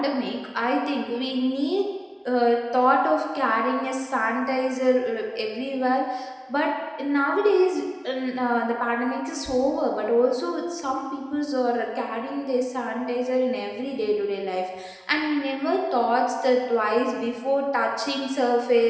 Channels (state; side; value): identical; both; correlation 1.00